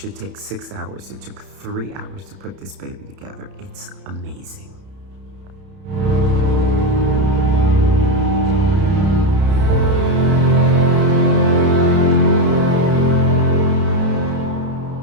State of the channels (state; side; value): late; left; 31 ms